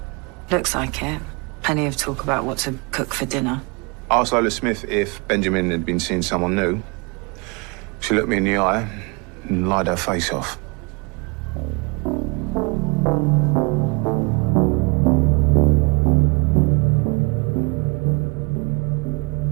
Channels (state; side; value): quieter; left; 29.4 dB